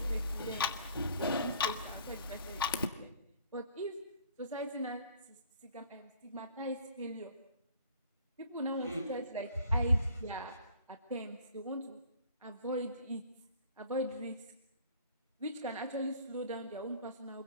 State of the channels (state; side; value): inverted; both; correlation -0.53